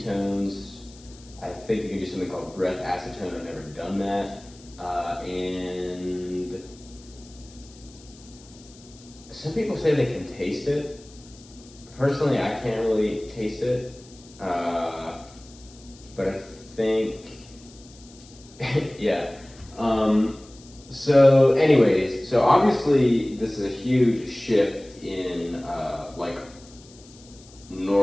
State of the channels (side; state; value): left; noise; hiss, 23 dB below the sound